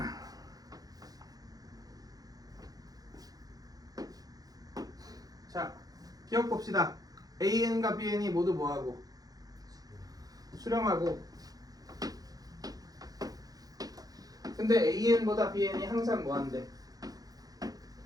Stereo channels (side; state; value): left; late; 0.18 ms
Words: 자, 기억 봅시다. AN과 BN이 모두 뭐하고? 수렴하고. 근데 AN보다 BN이 항상 뭐한데?